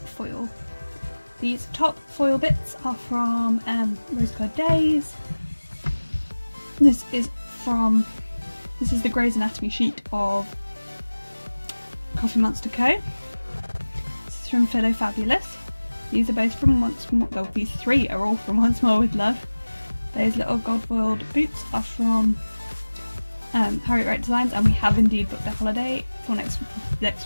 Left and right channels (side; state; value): both; inverted; correlation -1.00